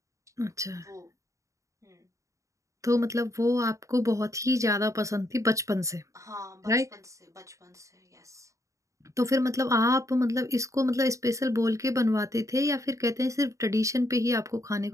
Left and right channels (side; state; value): left; late; 0.15 ms